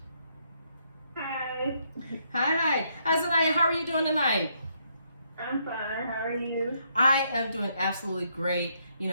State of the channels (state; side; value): inverted; both; correlation -0.73